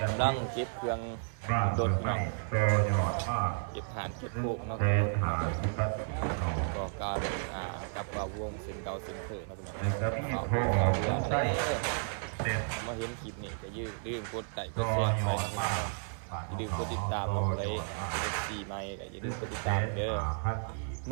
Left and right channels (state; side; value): silent; left; 56 dB below the other